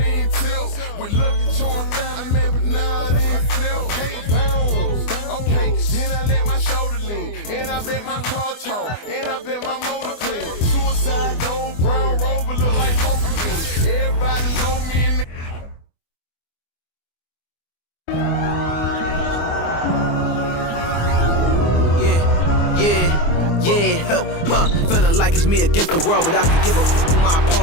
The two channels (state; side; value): late; right; 24 ms